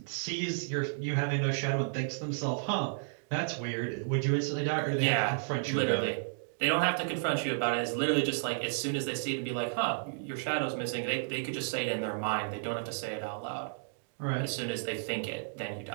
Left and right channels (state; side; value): silent; left; digital silence